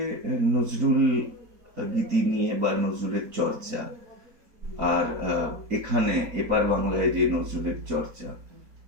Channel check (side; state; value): left; late; 4.3 ms